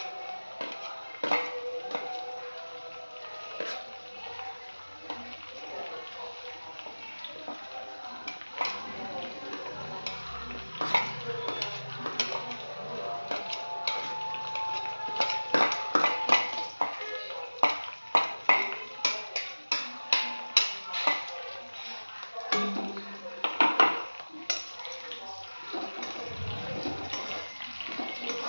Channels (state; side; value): inverted; both; correlation -1.00